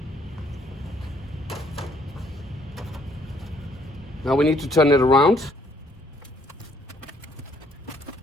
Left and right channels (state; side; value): normal; both; correlation 0.66